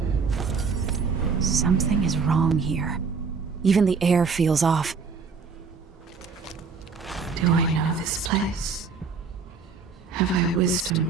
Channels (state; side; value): quieter; left; 5.2 dB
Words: Something is wrong here. Even the air feels off. Do I know this place? Have I wisdom